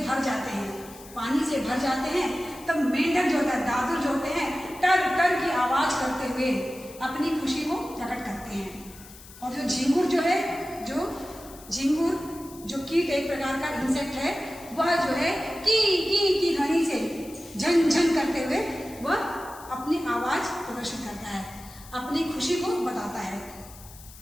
जाते हैं, पानी से भर जाते हैं, तब मेंढक जो होता है, दादुर जो होते हैं, टर टर की आवाज करते हुए अपनी खुशी को प्रकट करते हैं। और जो झिंगुर जो है, झिंगुर जो कीट एक प्रकार का इंसेक्ट है, वह जो है की ध्वनि से झन झन करते हुए वह अपनी आवाज प्रदर्शित करता है, अपनी खुशी को बताता है।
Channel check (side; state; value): left; noise; hiss, 19 dB below the sound